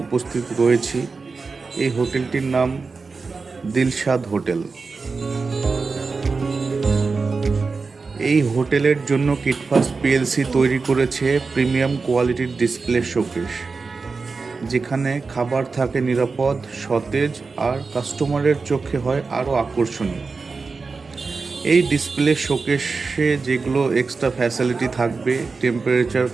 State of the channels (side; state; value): left; quieter; 4.4 dB